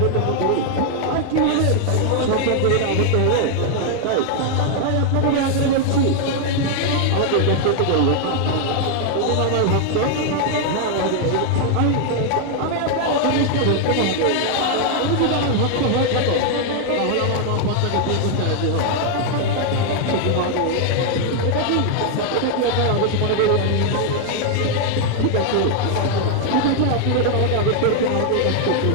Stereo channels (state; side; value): different; both; correlation 0.00